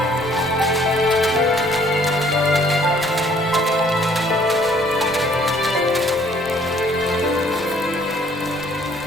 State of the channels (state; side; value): normal; both; correlation 0.60